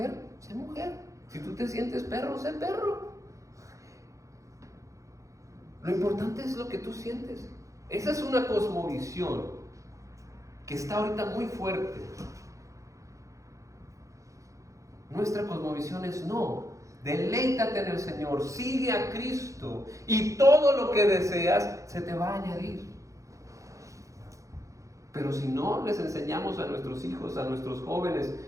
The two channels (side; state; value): left; late; 0.15 ms